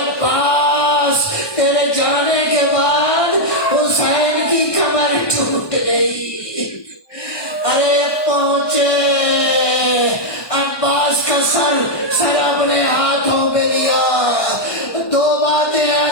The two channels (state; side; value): late; right; 1.2 ms